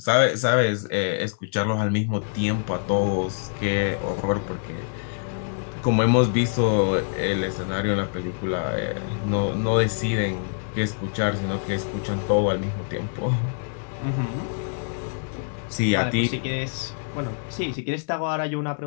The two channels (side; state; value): right; silent; 55 dB below the other